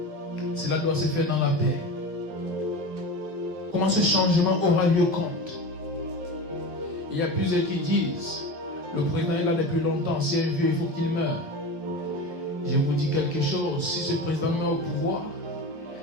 Cela doit se faire dans la paix. Comment ce changement aura lieu compte? Il y a plusieurs qui disent, le président est là depuis longtemps, c'est un vieux, il faut qu'il meure. Je vous dis quelque chose, si ce président meurt au pouvoir,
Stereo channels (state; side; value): late; left; 12 ms